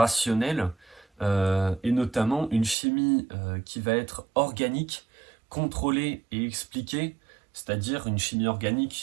et notamment une chimie qui va être organique, contrôlée et expliquée, c'est-à-dire une chimie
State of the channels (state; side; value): drops out; left; at 2.8 s